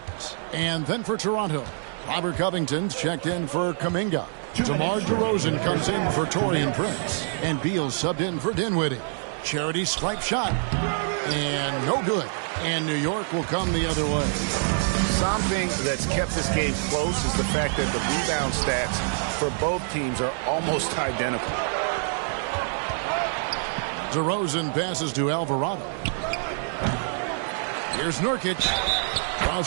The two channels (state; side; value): silent; left; digital silence